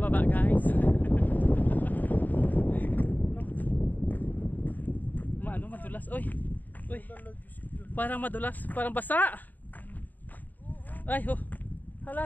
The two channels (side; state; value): right; late; 0.085 ms